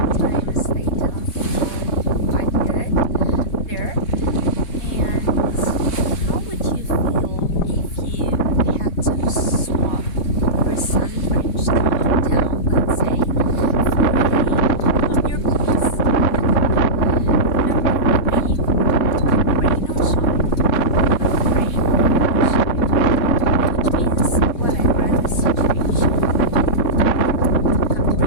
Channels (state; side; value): late; right; 4.1 ms